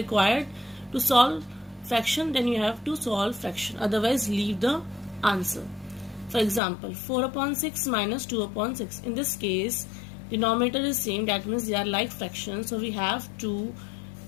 to solve fraction, then you have to solve fraction, otherwise leave the answer. For example, 4 upon 6 minus 2 upon 6. In this case, denominator is same, that means they are like fractions, so we have to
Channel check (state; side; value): drops out; right; at 6.6 s